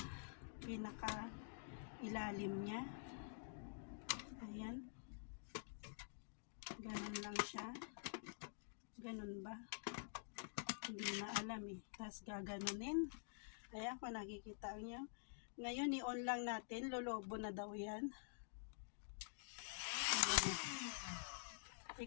pinaka ilalim niya. Ayan. Ganun lang siya. Ganun ba? Hindi na alam eh. Tapos gaganunin. Ayan, kung nakikita niyo. Ngayon, i-on lang natin. Lolobo na daw yan. Ayan.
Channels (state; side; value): silent; right; digital silence